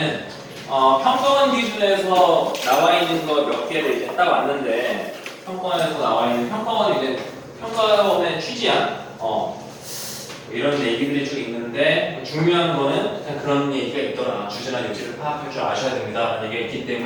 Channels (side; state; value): both; identical; correlation 1.00